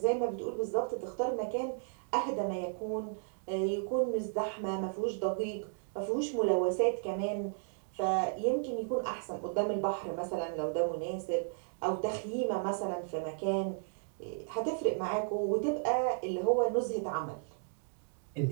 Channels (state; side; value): silent; left; digital silence